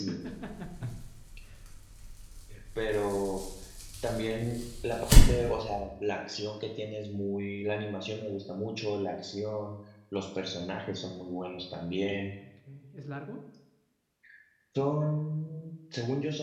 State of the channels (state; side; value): identical; both; correlation 1.00